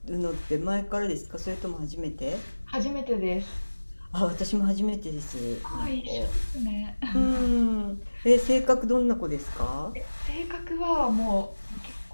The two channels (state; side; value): inverted; both; correlation -1.00